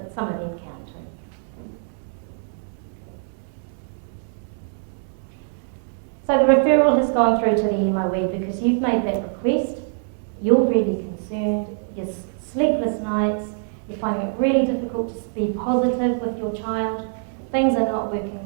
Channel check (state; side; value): silent; left; 63 dB below the other